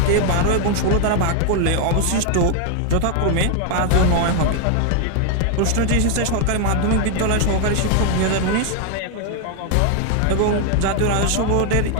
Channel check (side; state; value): both; different; correlation 0.00